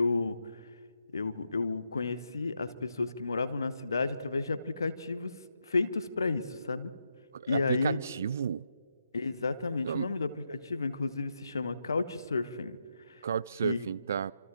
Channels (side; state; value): both; inverted; correlation -0.82